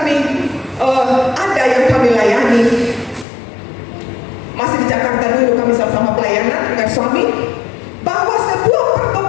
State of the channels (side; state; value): right; drops out; at 3.2 s